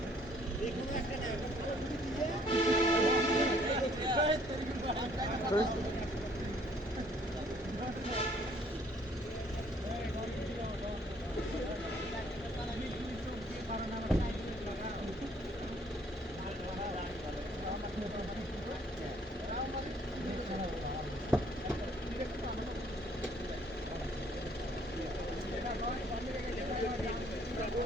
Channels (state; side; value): normal; both; correlation 0.62